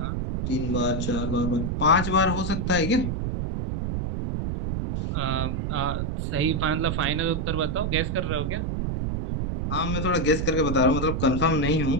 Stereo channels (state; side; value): noise; right; rumble, 1 dB below the sound